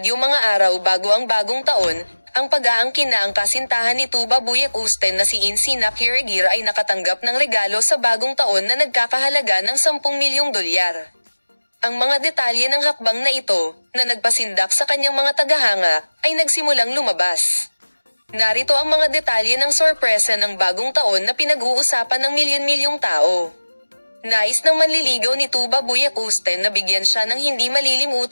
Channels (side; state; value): both; inverted; correlation -1.00